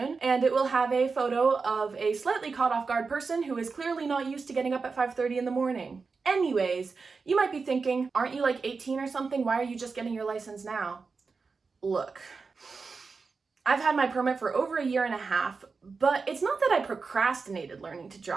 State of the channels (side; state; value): left; quieter; 4.7 dB